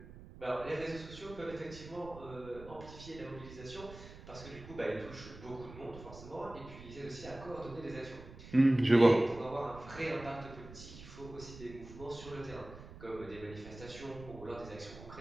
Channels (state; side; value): noise; right; rumble, 15 dB below the sound